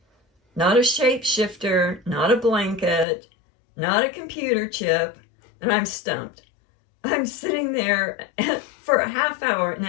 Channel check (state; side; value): drops out; right; at 3.1 s